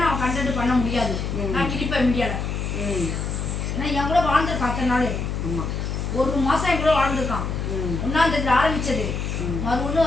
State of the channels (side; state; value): left; noise; hum, 3 dB below the sound